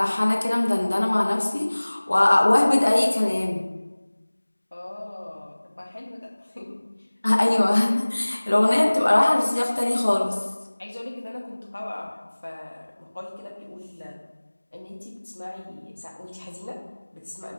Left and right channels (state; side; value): inverted; both; correlation -1.00